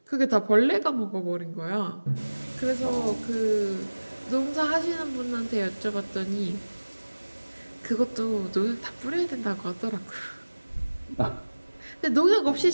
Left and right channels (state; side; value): inverted; both; correlation -1.00